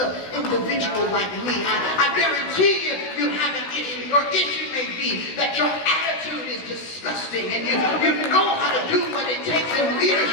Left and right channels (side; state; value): right; late; 16 ms